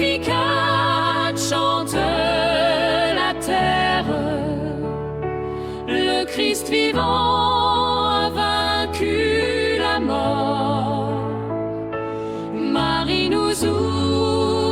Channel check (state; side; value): identical; both; correlation 1.00